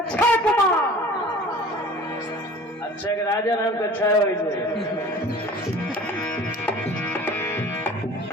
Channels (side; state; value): both; normal; correlation 0.44